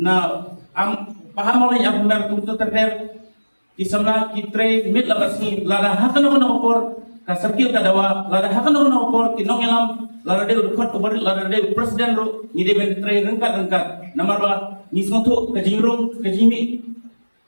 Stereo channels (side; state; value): both; inverted; correlation -1.00